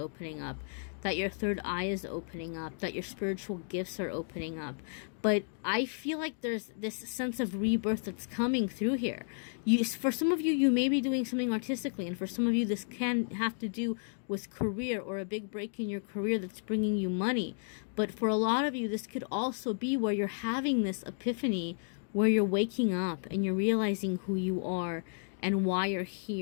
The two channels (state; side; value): silent; right; digital silence